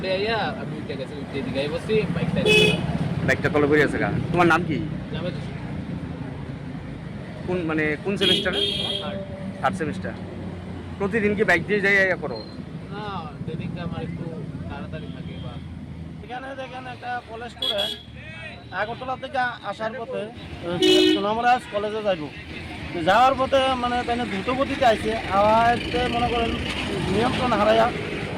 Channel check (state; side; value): identical; both; correlation 1.00